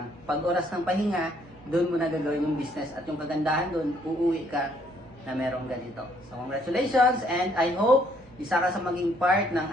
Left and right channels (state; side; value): noise; right; hum, 26 dB below the sound